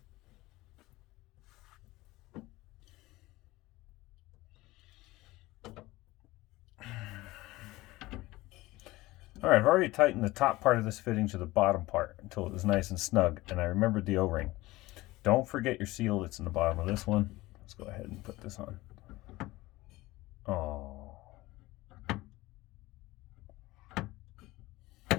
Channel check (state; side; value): quieter; right; 19.3 dB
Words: All right, I've already tightened the top part of this fitting to the bottom part until it was nice and snug, and I remembered the O-ring. Don't forget your seal that's in the bottom of this one. Let's go ahead and put this on. Oh.